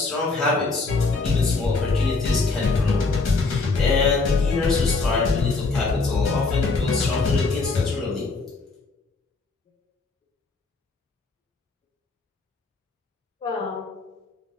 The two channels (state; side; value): quieter; right; 3.8 dB